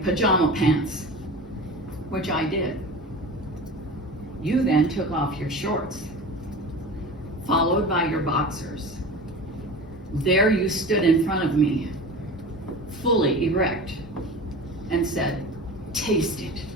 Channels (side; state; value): both; normal; correlation 0.33